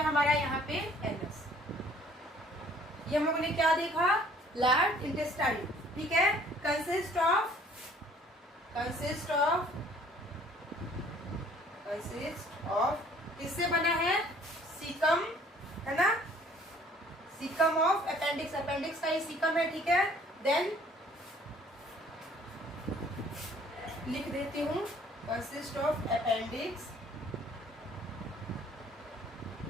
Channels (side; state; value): both; normal; correlation 0.56